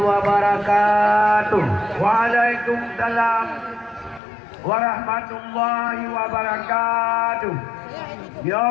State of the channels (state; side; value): drops out; right; at 4.2 s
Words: Waalaikumsalam warahmatullahi wabarakatuh. Ya